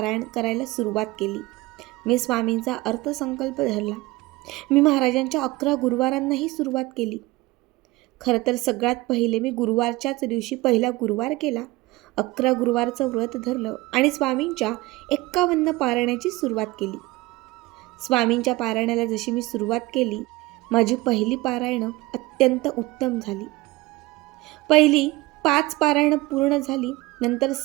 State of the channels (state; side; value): quieter; left; 20.8 dB